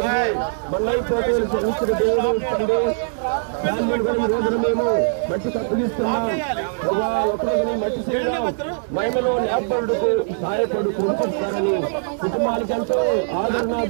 మన్నైపోతే క్షమించిన దేవుడు తండ్రి రోజున మేము మట్టి కప్పగిస్తున్నాం ఒకరోజు మట్టి చేయడం మహిమలో లేపడుకు సహాయపడు కృపిస్తారని కుటుంబాలకంటూ ఆదరణ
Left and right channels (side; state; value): left; silent; 63 dB below the other